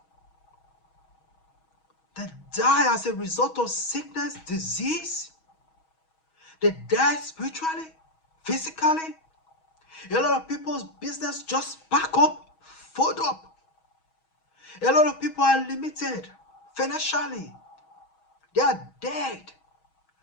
They die as a result of sickness, disease. They die spiritually, physically. A lot of people's business just back up, fold up. A lot of people are limited financially. They are dead.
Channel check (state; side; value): late; right; 6.3 ms